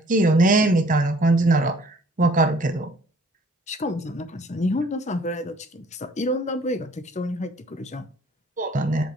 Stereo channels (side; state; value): both; normal; correlation 0.57